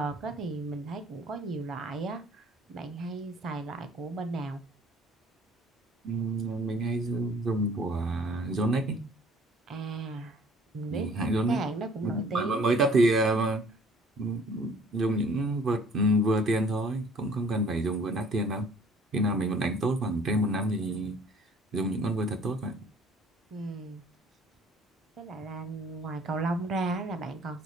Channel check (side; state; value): both; normal; correlation 0.54